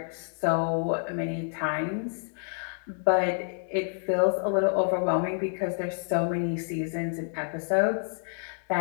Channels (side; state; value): right; silent; digital silence